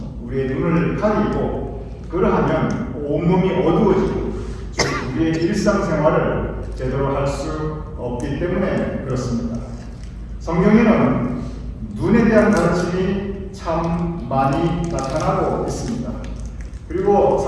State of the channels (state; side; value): identical; both; correlation 1.00